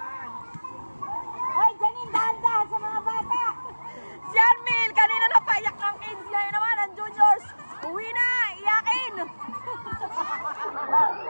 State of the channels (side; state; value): both; inverted; correlation -1.00